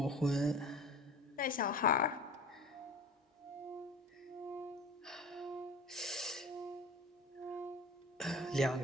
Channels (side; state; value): both; normal; correlation 0.39